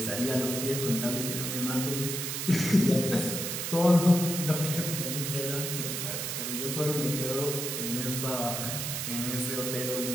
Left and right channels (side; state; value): right; noise; hiss, 3 dB below the sound